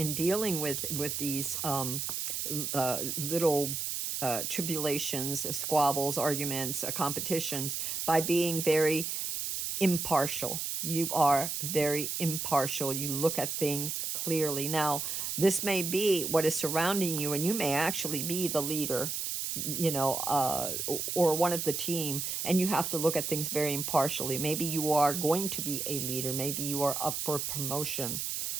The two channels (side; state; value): right; noise; hiss, 2 dB below the sound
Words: dealing with these little tribulations, squabbles, arguments, competitions, by being very impartial. You are very impartial. You look at things clearly. Now, this may be what is surrounding you, and you may actually be the leader, or one of the team, and you have to look at things very impartially. Maybe you are going to be a leader. Maybe you are up for promotion.